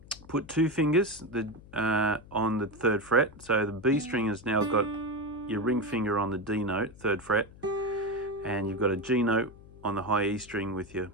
put two fingers on the third fret. So the B string has now got your ring finger on the D note, third fret, and you've got a G note on the high E string with your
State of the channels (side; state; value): left; noise; hum, 21 dB below the sound